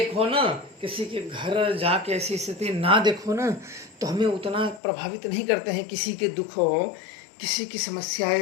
ना, किसी के घर जाके ऐसी स्थिति ना देखो ना, तो हमें उतना प्रभावित नहीं करते हैं। किसी के दुख हो, किसी की समस्याएं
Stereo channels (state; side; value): drops out; right; at 4.8 s